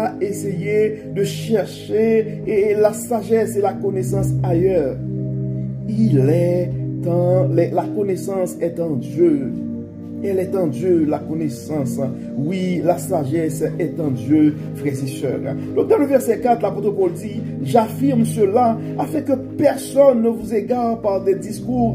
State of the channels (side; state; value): both; identical; correlation 1.00